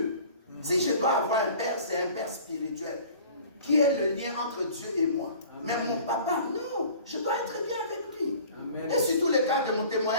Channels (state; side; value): inverted; both; correlation -0.47